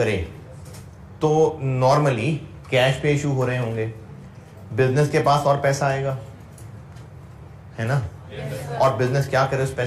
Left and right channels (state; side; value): identical; both; correlation 1.00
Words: तो नॉर्मली कैश पे इशू हो रहे होंगे, बिजनेस के पास और पैसा आएगा, है ना? और बिजनेस क्या करे उस